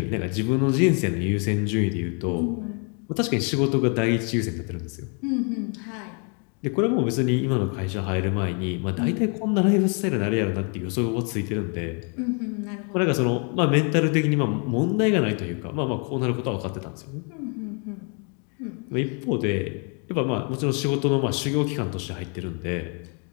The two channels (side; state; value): right; quieter; 37.7 dB